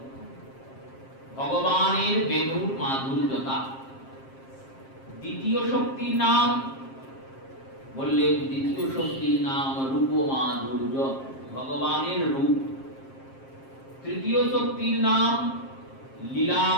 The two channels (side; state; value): right; late; 7.5 ms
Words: ভগবানের বেণুর মাধুর্যতা। দ্বিতীয় শক্তির নাম বললেন, দ্বিতীয় শক্তির নাম রূপ মাধুর্য, ভগবানের রূপ। তৃতীয় শক্তির নাম লীলা